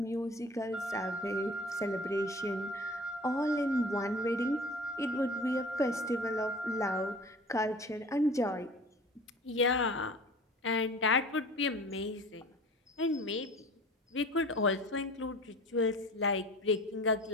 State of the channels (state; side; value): normal; both; correlation 0.42